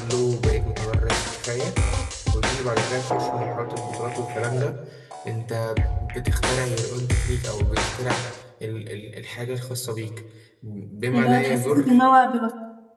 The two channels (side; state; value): both; identical; correlation 1.00